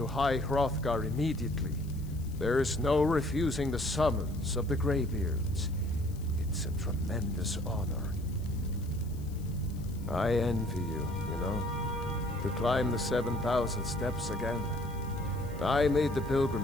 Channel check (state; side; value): noise; left; hiss, 23 dB below the sound